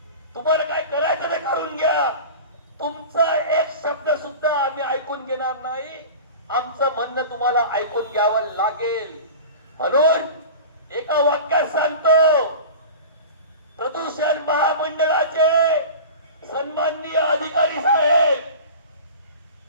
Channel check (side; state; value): both; inverted; correlation -0.35